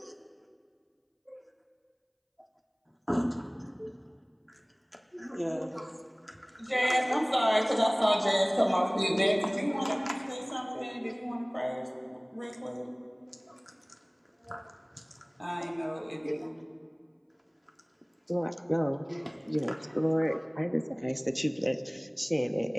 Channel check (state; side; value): identical; both; correlation 1.00